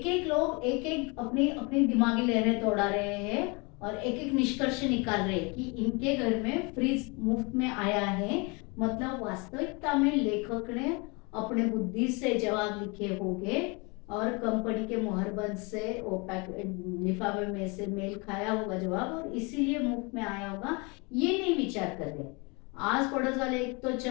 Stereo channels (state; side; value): quieter; right; 29.4 dB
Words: एक लोग एक एक अपनी अपनी दिमागी लहरें दौड़ा रहे हैं और एक एक निष्कर्ष निकाल रहे हैं कि इनके घर में फ्रिज मुफ्त में आया है। मतलब वास्तविकता में लेखक ने अपने बुद्धि से जवाब लिखे होंगे और कंपनी के मोहरबंद से वो लिफाफे में से मेल खाया होगा जवाब, और इसीलिए मुफ्त में आया होगा। ये नहीं विचार कर रहे। आस पड़ोस वाले एक तो